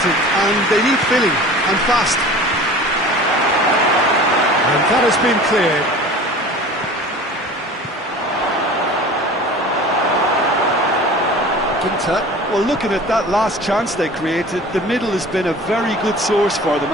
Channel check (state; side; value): normal; both; correlation 0.41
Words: and they need filling, and fast. And that has been cleared. Ginter. Well, looking at that last chance they created, the middle has been a very good source for them,